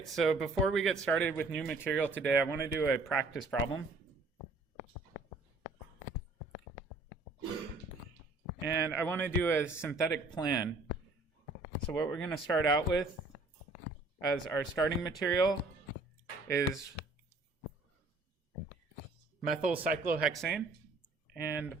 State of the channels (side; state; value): left; quieter; 3.4 dB